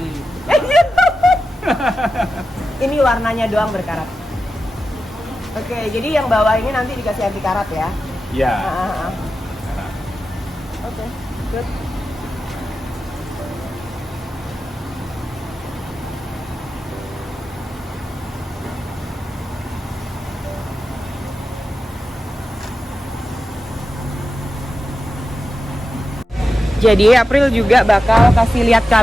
Ini warnanya doang berkarat. Oke, jadi yang bawah ini nanti dikasih anti karat ya. Iya. Karat. Oke, good. Jadi April juga bakal kasih lihat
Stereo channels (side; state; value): both; normal; correlation 0.91